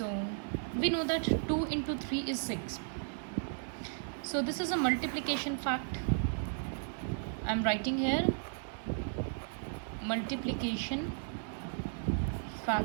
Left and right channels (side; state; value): left; silent; digital silence